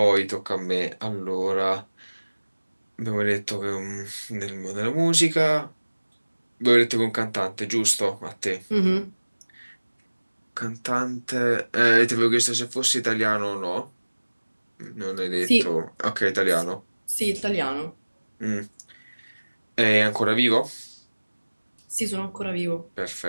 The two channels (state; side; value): inverted; both; correlation -1.00